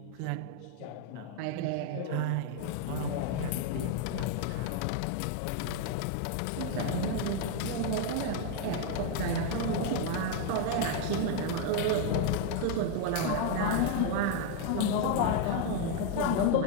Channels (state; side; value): different; both; correlation 0.01